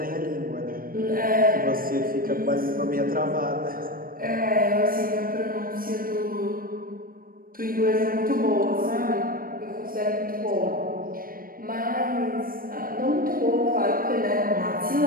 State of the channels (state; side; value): late; left; 0.41 ms